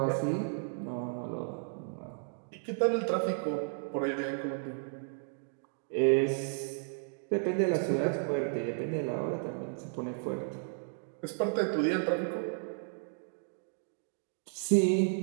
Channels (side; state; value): left; silent; digital silence